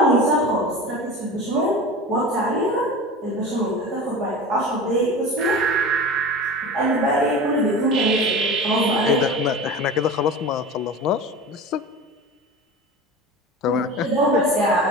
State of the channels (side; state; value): both; normal; correlation 0.32